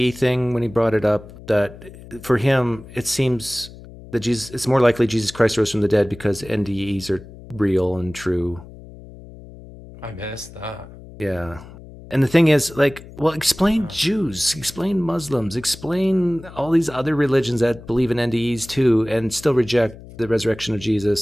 thing when he brought it up? That for him, it seems that it's more likely Jesus Christ rose from the dead because NDEs are real and true. I missed that. Yeah. And the thing is, like, well, explain Jews, explain Muslims, explain all these other religions that believe in NDEs too and still reject the resurrection of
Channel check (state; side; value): noise; left; hum, 18 dB below the sound